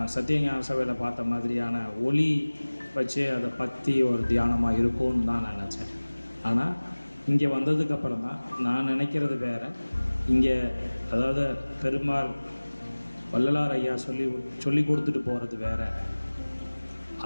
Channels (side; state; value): both; inverted; correlation -1.00